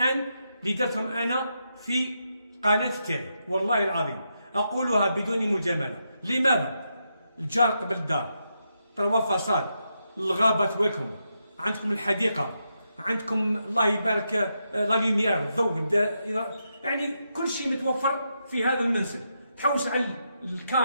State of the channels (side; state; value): both; inverted; correlation -0.83